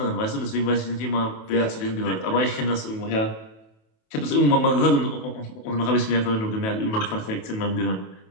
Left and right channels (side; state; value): right; late; 28 ms